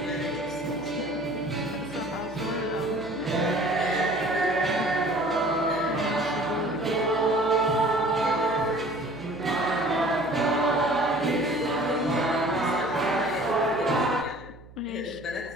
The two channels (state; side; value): noise; right; hum, 21 dB below the sound